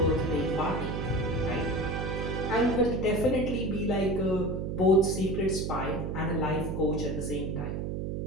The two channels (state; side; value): noise; right; hum, 3 dB below the sound